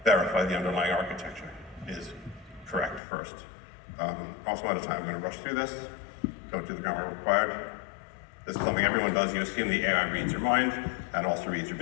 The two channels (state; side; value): drops out; right; at 3.0 s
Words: verify the underlying architecture is correct first. Also out of time, I'm going to rush through this. Don't do the grammar required. This is something everyone does. You assume the AI reads your mind and also reads your